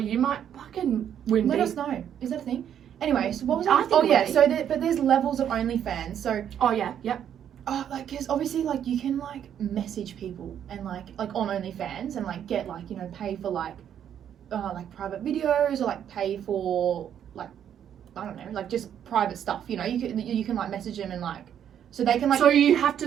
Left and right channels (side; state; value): left; quieter; 9.4 dB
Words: might fucking win. Let us know. Is that a thing? Anyway, so what was I I? think Oh it yeah, would be. so but there's levels of OnlyFans. So Oh yeah, yep. like, because obviously, like, you can, like, message people and like on OnlyFans and, like, get, like, you know, pay for, like private videos, or, like, pay for, like, I don't know, like, just private stuff, you know. You can like message them and, like, so they can, like... So you have